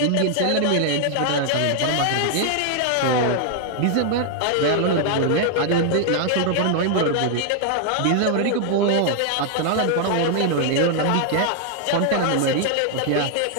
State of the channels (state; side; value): different; both; correlation 0.00